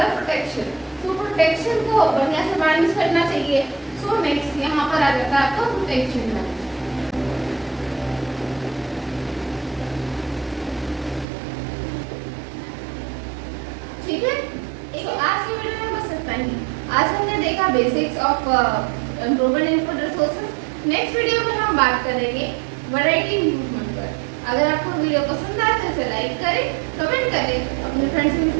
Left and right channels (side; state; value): left; drops out; at 11.2 s